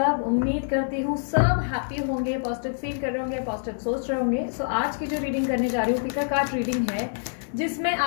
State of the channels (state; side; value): silent; right; 61 dB below the other